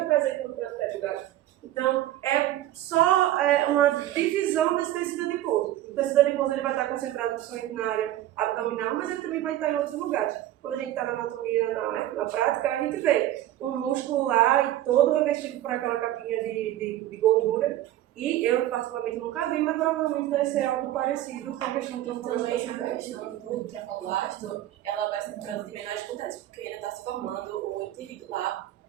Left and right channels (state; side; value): quieter; left; 13.6 dB